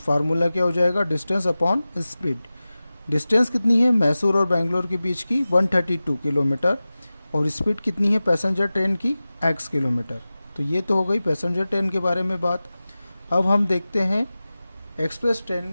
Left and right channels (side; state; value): both; inverted; correlation -0.96